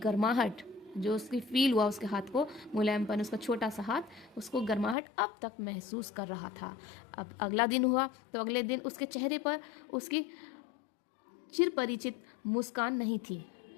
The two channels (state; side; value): drops out; right; at 5.0 s